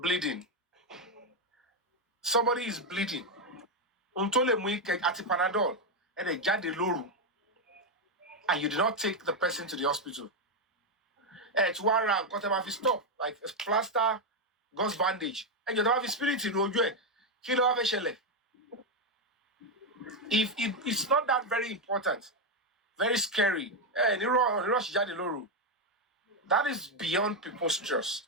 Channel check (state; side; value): normal; both; correlation 0.04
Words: somebody is bleeding. Untole muike ati Panadol and a jade loru, and you did not take the person to the hospital. It's one round, got him off his stop, like a plaster, gauze bandage, and you don't have his spirit in Ojo. Kilo have a shell. If it's not that very important, very scary. That is beyond people's trust.